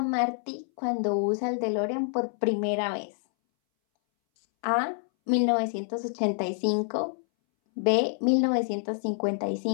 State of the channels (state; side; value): silent; right; 60 dB below the other